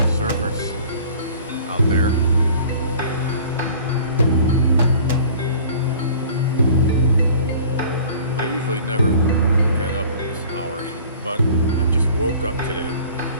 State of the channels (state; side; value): inverted; both; correlation -0.47